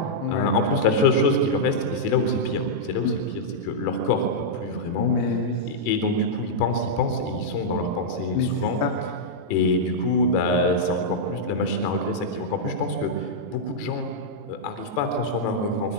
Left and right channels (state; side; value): late; right; 18 ms